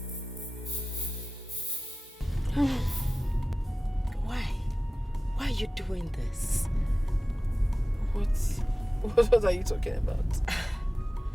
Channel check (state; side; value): normal; both; correlation 0.96